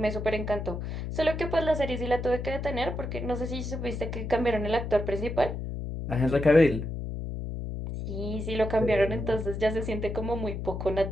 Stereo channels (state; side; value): noise; left; hum, 5 dB below the sound